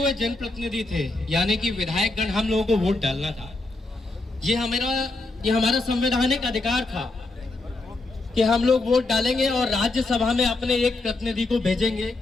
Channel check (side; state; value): right; quieter; 3.1 dB